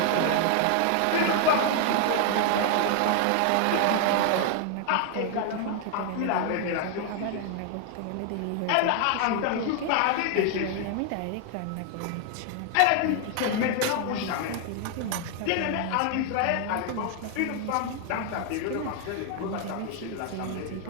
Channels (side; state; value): both; different; correlation 0.00